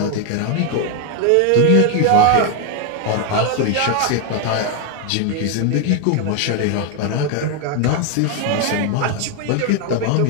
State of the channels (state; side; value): different; both; correlation 0.01